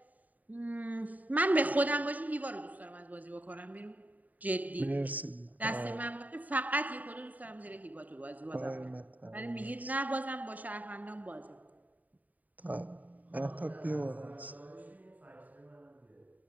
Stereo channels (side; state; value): left; late; 0.076 ms